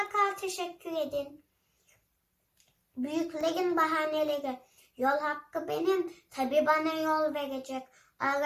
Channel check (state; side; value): identical; both; correlation 1.00